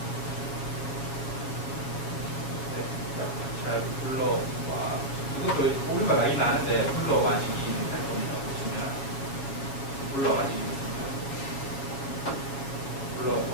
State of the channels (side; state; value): right; late; 7.3 ms